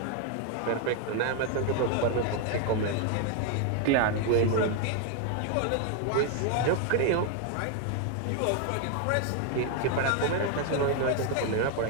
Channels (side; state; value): both; different; correlation 0.00